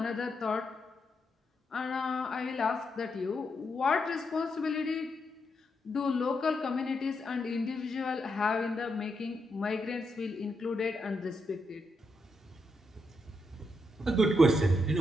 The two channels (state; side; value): normal; both; correlation 0.82